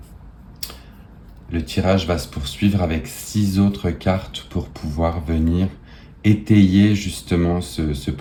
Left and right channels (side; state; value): both; identical; correlation 1.00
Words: Le tirage va se poursuivre avec 6 autres cartes pour pouvoir venir étayer justement ce